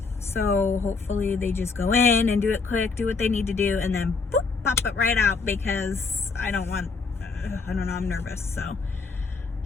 so hopefully they just go in and do it quick, do what they need to do, and then boop, pop it right out, because I don't know, I'm nervous, so.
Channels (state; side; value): quieter; right; 4.5 dB